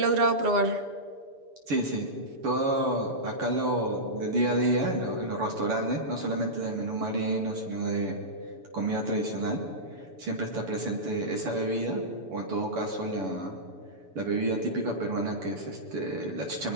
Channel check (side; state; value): left; late; 7.0 ms